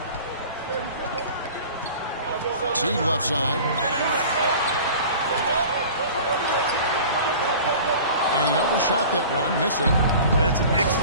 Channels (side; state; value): both; inverted; correlation -0.41